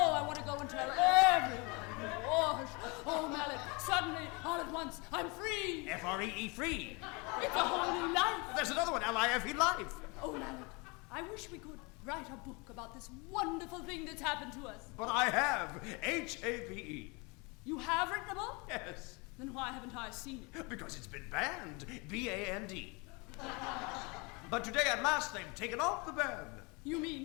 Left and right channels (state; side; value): quieter; right; 28.9 dB